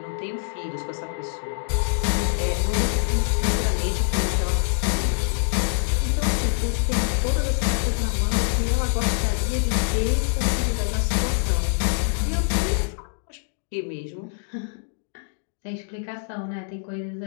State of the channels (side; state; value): right; silent; digital silence